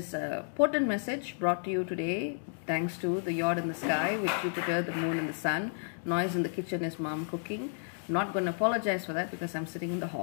a potent message brought to you today thanks to the yacht in the sky with Jupiter, the moon and the sun. Noise in the kitchen is mom cooking. Not going to apologize for that because I'm sitting in the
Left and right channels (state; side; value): silent; right; digital silence